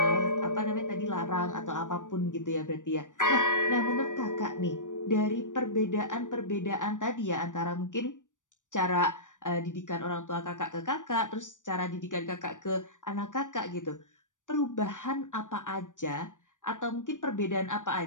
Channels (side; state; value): right; late; 0.87 ms